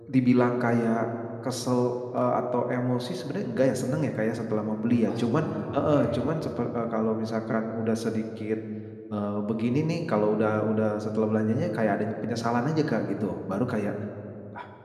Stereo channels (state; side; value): identical; both; correlation 1.00